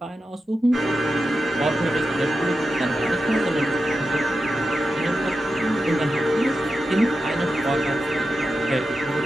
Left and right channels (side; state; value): both; normal; correlation 0.91